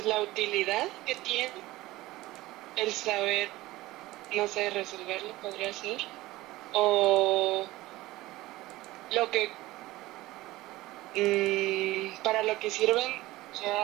la utilidad que tiene el saber, no sé, resolverlo podría ser. O lo que, para lo que sirven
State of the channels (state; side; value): quieter; left; 18.1 dB